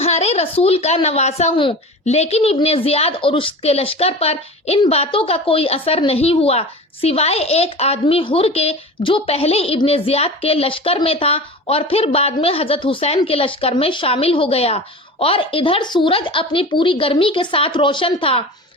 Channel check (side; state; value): both; normal; correlation 0.34